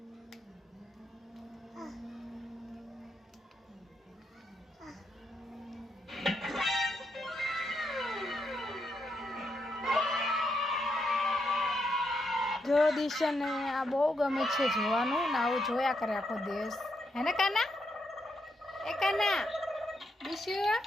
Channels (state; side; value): normal; both; correlation 0.80